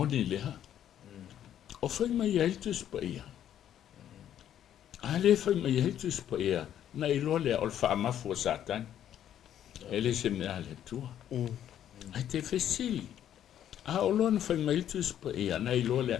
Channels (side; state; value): right; quieter; 10.6 dB